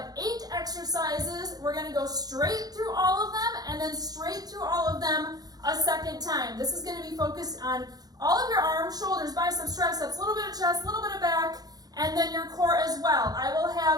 8 exercises. We're going to go straight through all of them and then straight through all of them a second time. This is going to be focused on all of your arms, shoulders, biceps, triceps, a little bit of chest, a little bit of back, and then your core as well. I will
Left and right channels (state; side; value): late; left; 0.19 ms